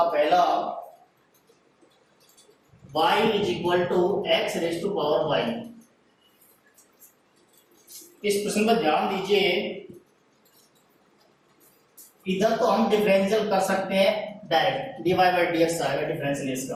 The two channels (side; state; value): both; identical; correlation 1.00